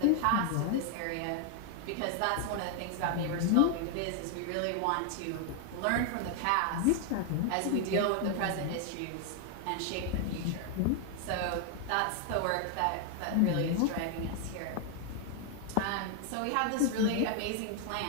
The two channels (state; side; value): different; both; correlation 0.00